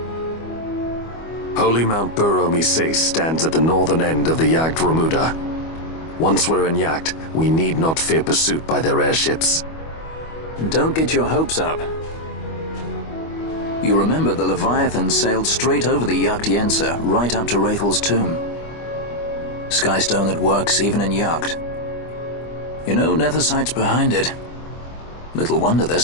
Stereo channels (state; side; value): late; right; 25 ms